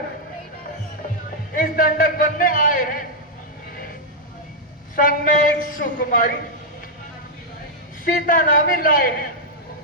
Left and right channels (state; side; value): normal; both; correlation -0.04